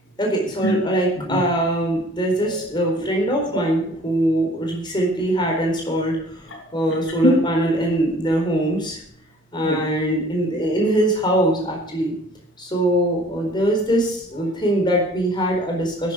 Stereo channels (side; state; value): both; normal; correlation 0.52